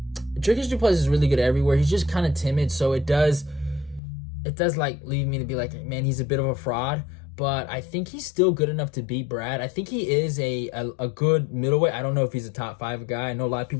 du Plessis is really good everywhere. He's just kind of timid, so it does leave me to be like, man, he's a bit of a fraud, but I think he's still good enough to beat Brad. I think he is a good middleweight. I don't know if he's a top 5 guy. I know a lot of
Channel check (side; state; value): right; drops out; at 4.0 s